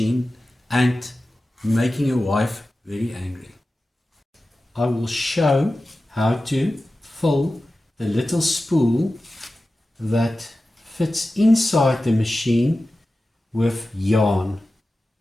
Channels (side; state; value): both; normal; correlation 0.94